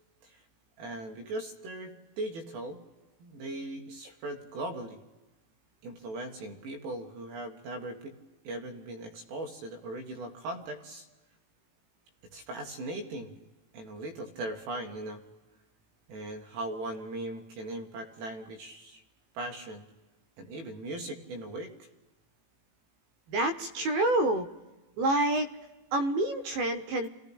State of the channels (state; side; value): late; left; 18 ms